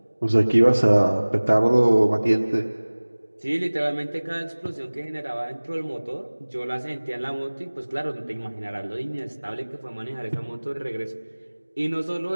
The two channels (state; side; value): inverted; both; correlation -1.00